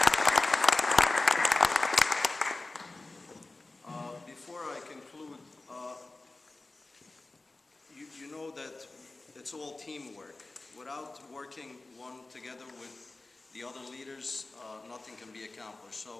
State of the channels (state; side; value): quieter; right; 3.2 dB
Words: Before I conclude, you know that it's all teamwork. Without working one together with the other leaders, nothing can be accomplished.